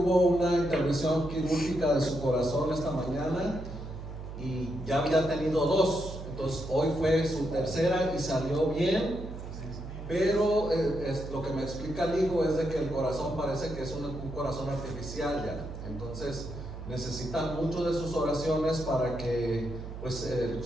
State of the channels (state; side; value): noise; right; hum, 10 dB below the sound